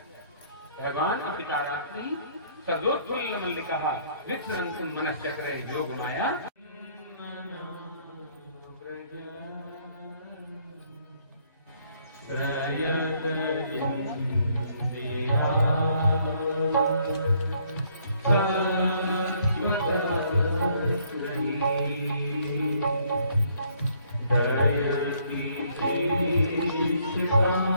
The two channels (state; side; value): inverted; both; correlation -0.66